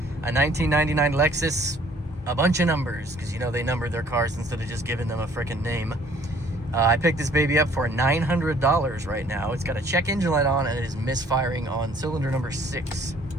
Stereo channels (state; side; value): normal; both; correlation 0.58